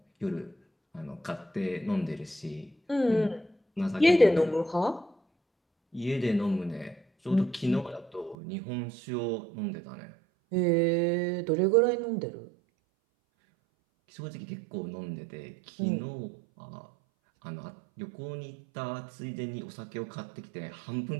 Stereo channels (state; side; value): drops out; left; at 8.3 s